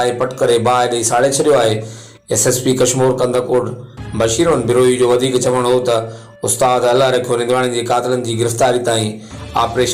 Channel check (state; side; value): identical; both; correlation 1.00